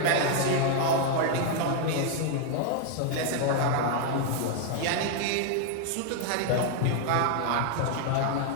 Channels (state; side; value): different; both; correlation 0.00